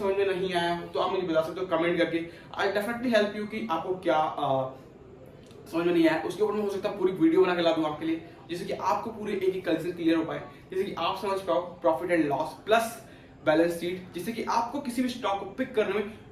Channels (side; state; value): both; identical; correlation 1.00